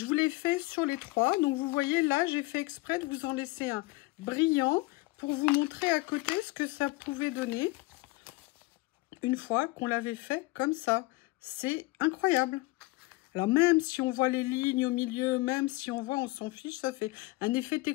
vous l'ai fait sur les 3. Donc, vous voyez, là, j'ai fait exprès de vous en laisser un brillant pour vous montrer à côté ce que ça pouvait donner une fois qu'on l'avait fait comme ça. C'est incroyable. Alors, même si on voit les lignes au milieu, même si on voit, on s'en fiche, ça fait un effet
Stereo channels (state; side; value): quieter; right; 22.0 dB